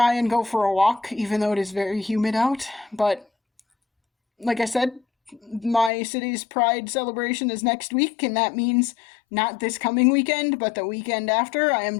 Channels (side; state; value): right; drops out; at 5.9 s